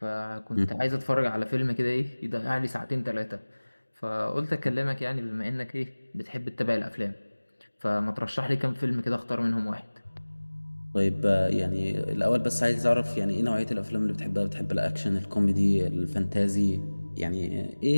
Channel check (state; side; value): inverted; both; correlation -1.00